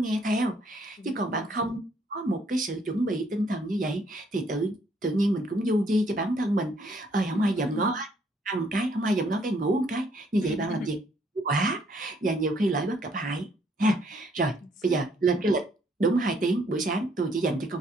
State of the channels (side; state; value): both; normal; correlation 0.67